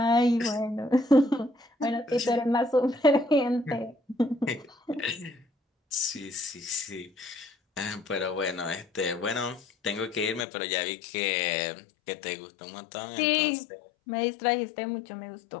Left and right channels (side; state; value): right; drops out; at 10.5 s